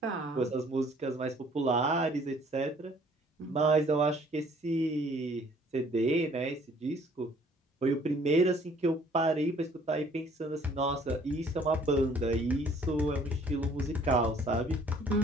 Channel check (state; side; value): normal; both; correlation 0.58